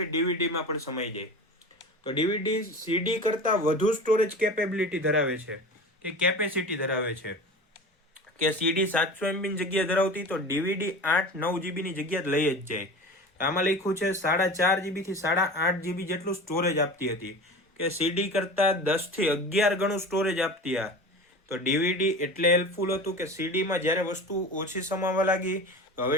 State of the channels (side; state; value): both; normal; correlation 0.34